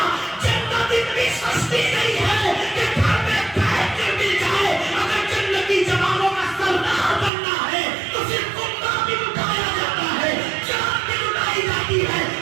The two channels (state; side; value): drops out; left; at 7.3 s